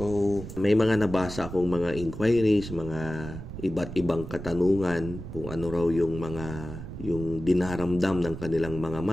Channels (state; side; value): noise; right; rumble, 10 dB below the sound